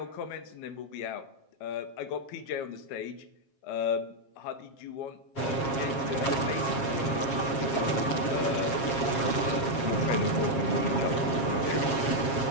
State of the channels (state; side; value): late; right; 7.4 ms